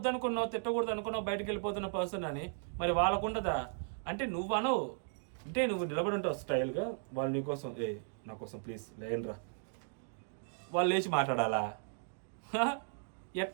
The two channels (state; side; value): silent; left; digital silence